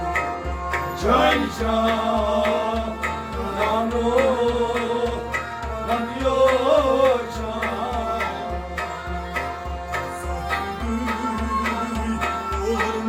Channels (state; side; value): identical; both; correlation 1.00